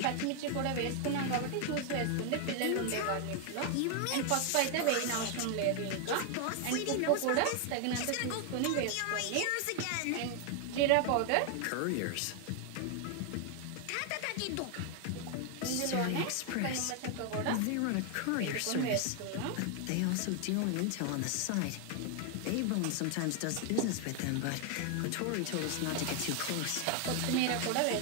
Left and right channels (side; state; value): both; different; correlation 0.00